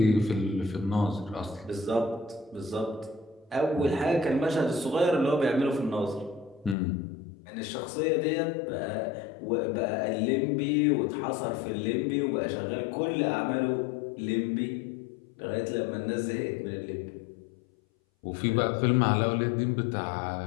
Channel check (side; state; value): right; drops out; at 6.8 s